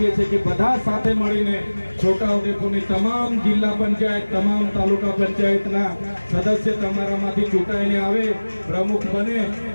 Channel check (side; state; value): both; inverted; correlation -1.00